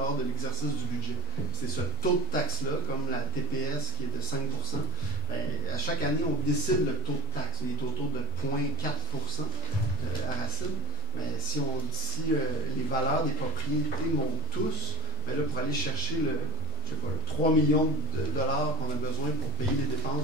de l'exercice du budget. C'est ce taux de taxe-là, comme la TPS qui est de 5 %. À chaque année, on décide le taux de taxe. Il est autour de 0,4 % à Racine. Mais si les valeurs des propriétés montent tous, bien là, pour aller chercher le 3 millions de dollars qu'on a besoin pour payer les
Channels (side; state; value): both; normal; correlation 0.19